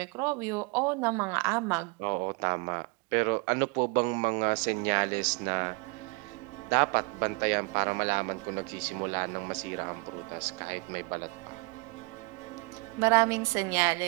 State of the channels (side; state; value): left; quieter; 29.5 dB